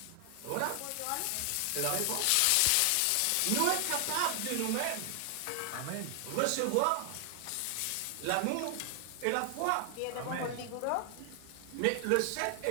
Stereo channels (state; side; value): different; both; correlation 0.00